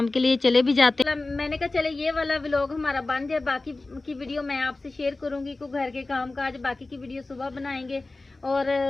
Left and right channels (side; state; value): right; quieter; 3.2 dB